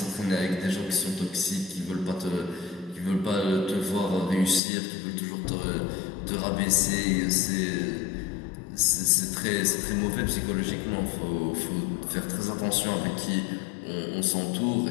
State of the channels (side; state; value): right; drops out; at 4.6 s